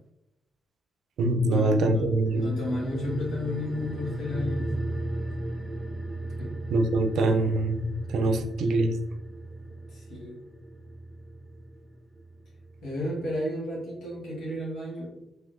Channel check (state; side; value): normal; both; correlation 0.70